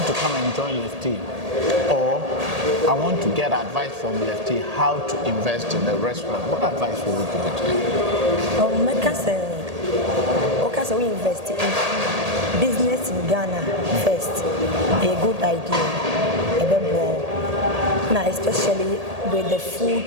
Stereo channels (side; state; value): left; late; 1.8 ms